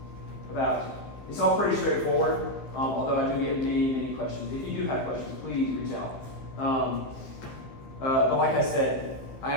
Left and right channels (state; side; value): late; right; 15 ms